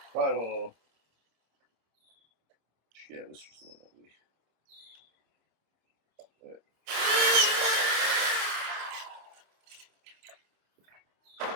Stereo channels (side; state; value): left; late; 26 ms